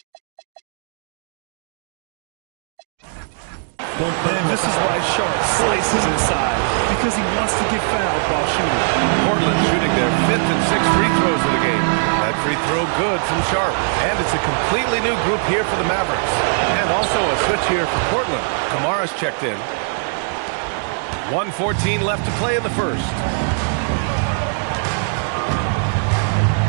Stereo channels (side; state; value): left; silent; digital silence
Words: And this is why Sharp slices inside, because he wants to get fouled while shooting. Portland shooting their 5th and 6th free throws of the game. That free throw good from Sharp. And it's a completely new group here for the Mavericks. And also a switch here for Portland. Kamara's checked in. 1:14 left to play in the first.